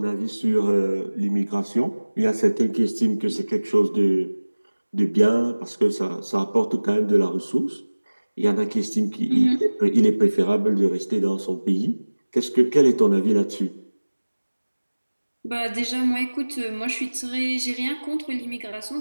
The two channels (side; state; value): both; inverted; correlation -1.00